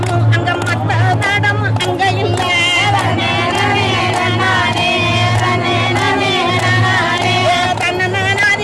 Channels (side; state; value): both; identical; correlation 1.00